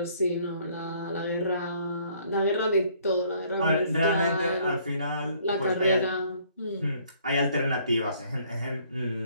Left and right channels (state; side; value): inverted; both; correlation -0.62